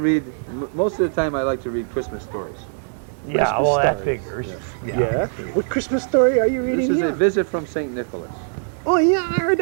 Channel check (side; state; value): left; silent; digital silence